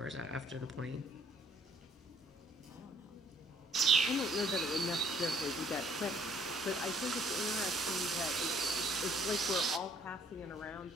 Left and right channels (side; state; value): both; normal; correlation 0.61